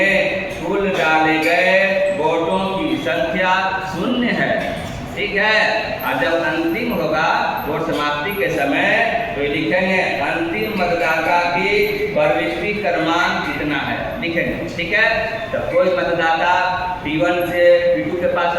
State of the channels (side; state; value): both; identical; correlation 1.00